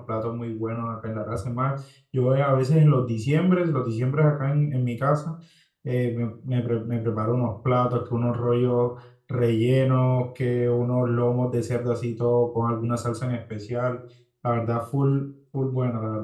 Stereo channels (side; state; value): both; identical; correlation 1.00